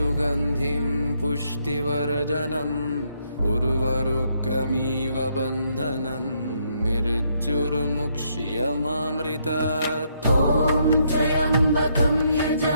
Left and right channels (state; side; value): inverted; both; correlation -0.74